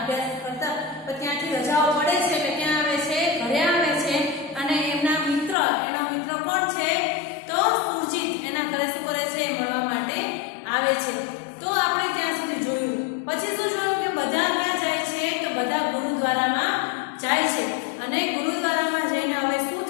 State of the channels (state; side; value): drops out; right; at 5.6 s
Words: કરતા તો ત્યાંથી રજાઓ પડે છે એટલે ક્યાં આવે છે, ઘરે આવે છે અને એમના મિત્ર, એનો મિત્ર કોણ છે? તો સુરજીત એના ઘરે શું કરે છે, મળવા માટે આવે છે। તો આપણે ત્યાં સુધી જોયું, પછી શું જોયું કે બધા ક્યાં જાય છે? તો બધા ગુરુદ્વારામાં જાય છે અને ગુરુદ્વારામાં જઈને હવે શું